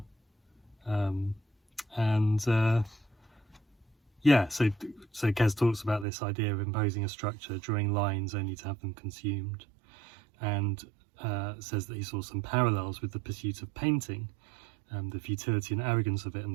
Yeah, so Kes talks about this idea of imposing a structure, drawing lines only to have them consumed, and says that he saw some parallels with the pursuit of painting, the futility and arrogance of it, and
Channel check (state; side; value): drops out; left; at 6.1 s